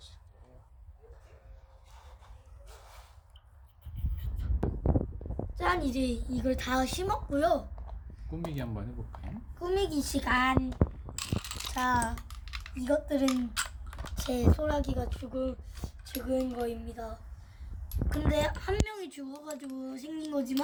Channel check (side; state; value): both; identical; correlation 1.00